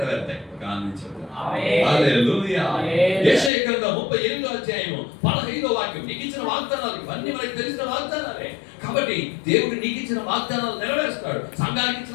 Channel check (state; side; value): drops out; right; at 3.5 s